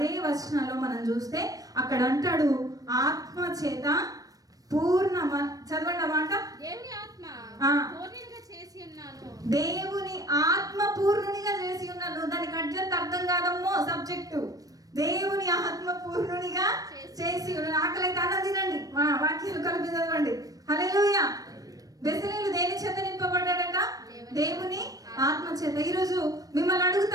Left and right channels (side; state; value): left; late; 0.18 ms